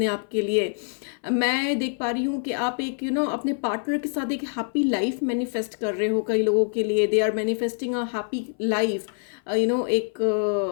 आप के लिए। मैं देख पा रही हूँ कि आप एक अपने पार्टनर के साथ एक हैप्पी लाइफ मैनिफेस्ट कर रहे हो। कई लोगों के लिए they are manifesting a happy life, एक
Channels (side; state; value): right; silent; 59 dB below the other